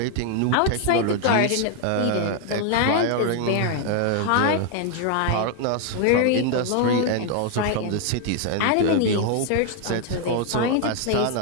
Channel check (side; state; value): both; different; correlation 0.00